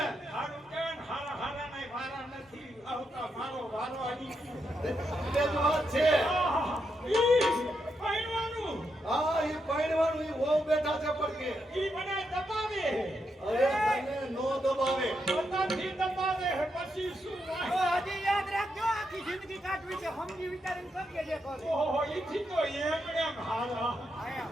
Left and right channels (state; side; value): normal; both; correlation 0.82